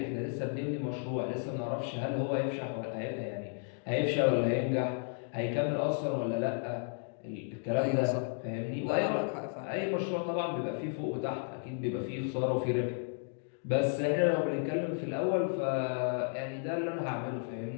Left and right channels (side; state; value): right; silent; 56 dB below the other